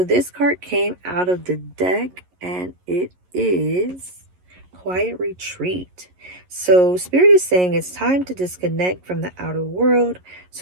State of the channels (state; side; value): late; left; 11 ms